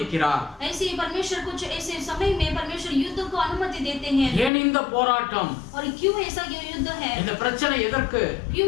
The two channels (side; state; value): right; drops out; at 4.5 s